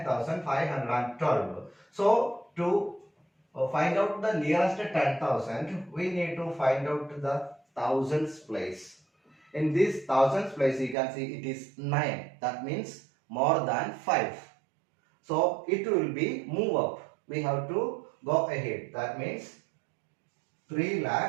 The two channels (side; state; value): left; drops out; at 11.0 s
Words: So to find out the nearest 10,000, we need to find out the thousands place. In this thousands place, you can see it is 9. That means more than 5. So it will be move up. We have to go ahead. That means